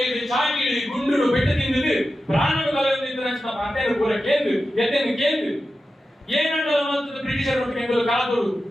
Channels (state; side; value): normal; both; correlation 0.92